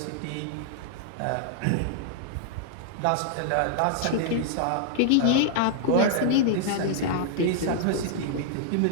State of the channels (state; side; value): different; both; correlation -0.01